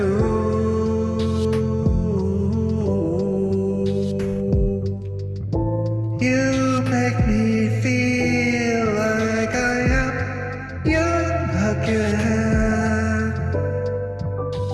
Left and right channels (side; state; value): both; identical; correlation 1.00